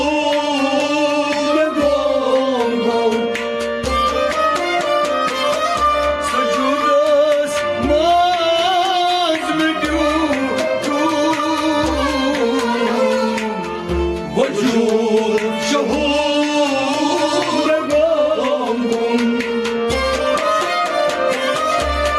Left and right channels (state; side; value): identical; both; correlation 1.00